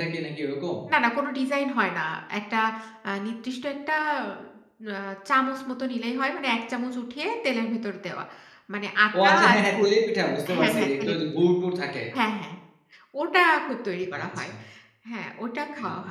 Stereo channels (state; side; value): identical; both; correlation 1.00